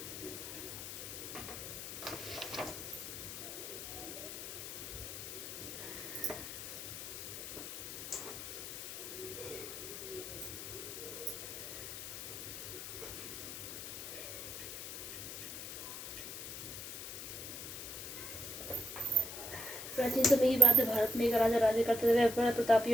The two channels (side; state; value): left; noise; hiss, 8 dB below the sound